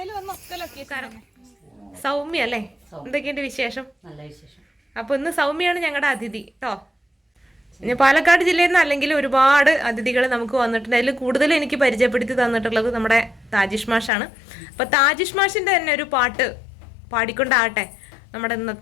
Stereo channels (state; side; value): drops out; right; at 14.1 s